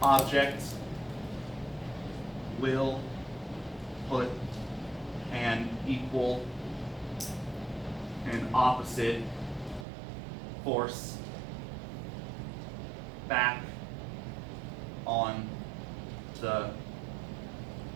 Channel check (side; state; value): left; drops out; at 9.9 s